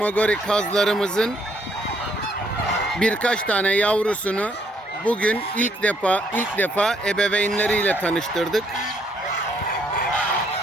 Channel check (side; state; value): both; normal; correlation 0.69